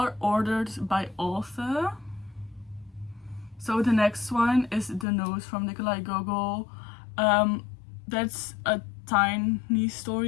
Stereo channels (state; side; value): drops out; right; at 5.1 s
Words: ordered by author. So the next one is The Nose from Nikolaij Gogol. That's a tiny